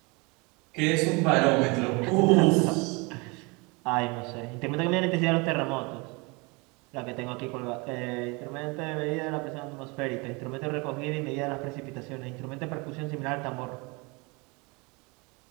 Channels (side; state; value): left; quieter; 28.0 dB